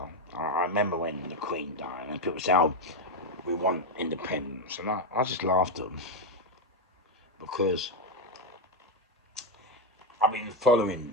I remember when the Queen died and people say, "Oh, we want independence," and I just laughed at them because I've been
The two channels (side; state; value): both; normal; correlation 0.06